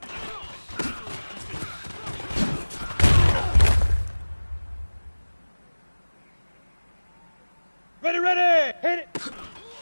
Ready, hit it.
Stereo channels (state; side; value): inverted; both; correlation -1.00